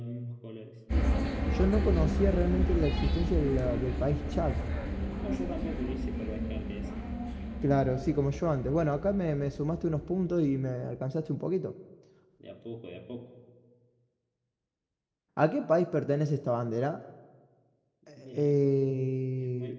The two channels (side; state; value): both; identical; correlation 1.00